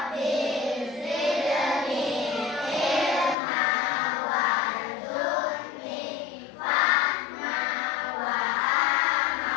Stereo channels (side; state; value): right; drops out; at 3.4 s